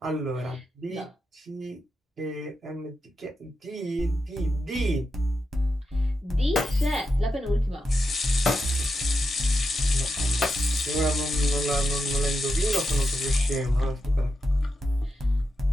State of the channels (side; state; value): both; normal; correlation 0.87